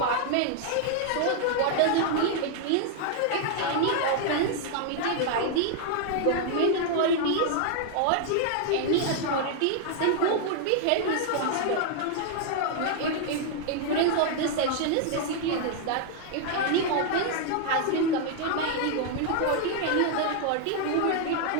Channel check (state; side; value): different; both; correlation 0.00